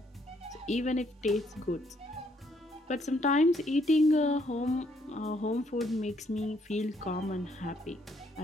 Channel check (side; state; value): both; normal; correlation 0.70